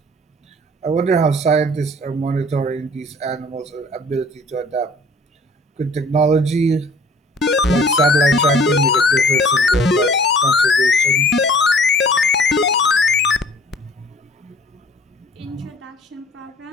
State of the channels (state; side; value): normal; both; correlation 0.52